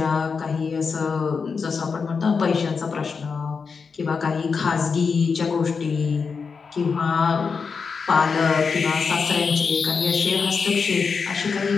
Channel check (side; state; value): right; quieter; 5.3 dB